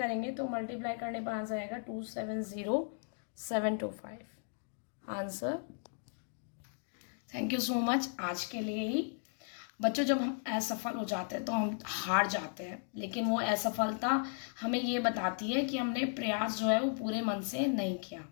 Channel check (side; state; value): right; silent; 54 dB below the other